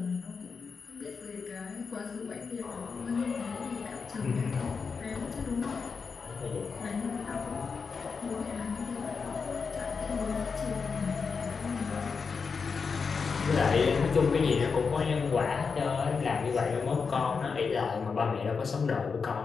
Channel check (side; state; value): right; quieter; 5.3 dB